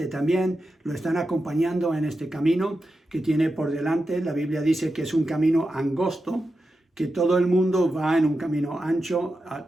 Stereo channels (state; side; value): normal; both; correlation 0.90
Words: también, lo están acompañando en este camino que tiene por delante. La Biblia dice que es un camino angosto, que todo el mundo va en un camino ancho